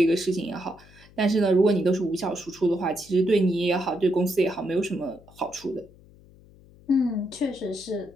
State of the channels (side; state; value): left; noise; hum, 25 dB below the sound